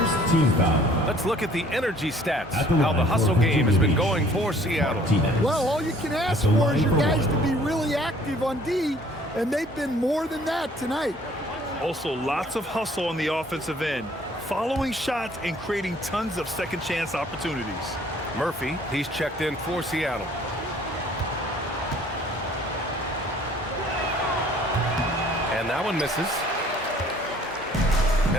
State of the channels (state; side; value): normal; both; correlation 0.56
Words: team foul. Let's look at the energy stats, how the hustle game has been going for Seattle. Well, all you can ask for is your guys to be really active on D, and they've been more than that tonight. Also, lots of hustle on the offensive end, following shots and creating tons of second chance opportunities. Murphy, he's checked in for Seattle. And that one misses.